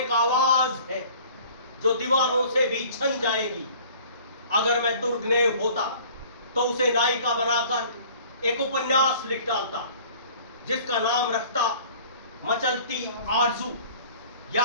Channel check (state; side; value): inverted; both; correlation -0.49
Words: आवाज है जो दीवारों से भी छन जाएगी। अगर मैं दुर्गनेव होता तो उसे नायिका बनाकर एक उपन्यास लिख डालता जिसका नाम रखता मचलती आरजू